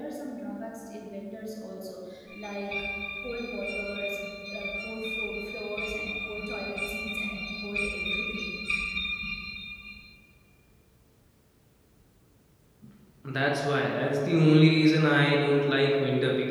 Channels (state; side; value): identical; both; correlation 1.00